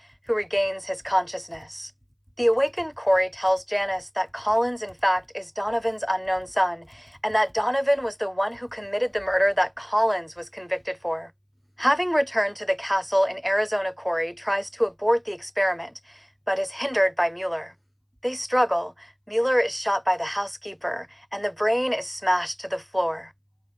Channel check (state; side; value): identical; both; correlation 1.00